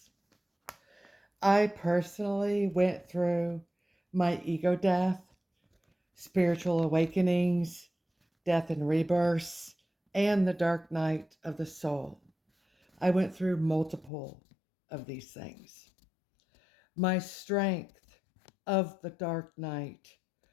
I personally went through my ego death, spiritual awakenings, death and rebirths, and the dark night of the soul. I went through multiple of these things. My strength of the dark night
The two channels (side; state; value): right; drops out; at 14.1 s